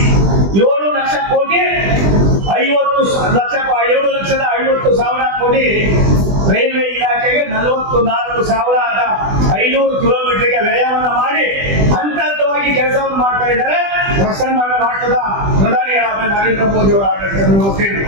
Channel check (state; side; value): late; left; 20 ms